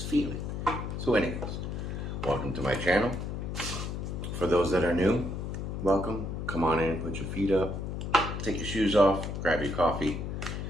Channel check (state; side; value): noise; left; hum, 4 dB below the sound